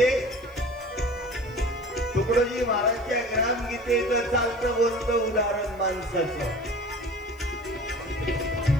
तुकडोजी महाराजच्या ग्रामगीतेचं चालतं बोलतं उदाहरण माणसाचं.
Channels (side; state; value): right; noise; hiss, 29 dB below the sound